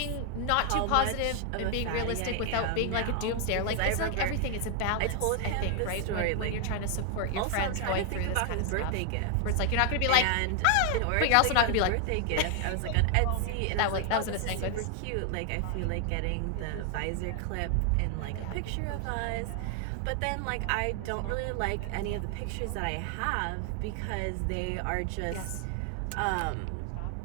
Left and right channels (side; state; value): both; different; correlation 0.00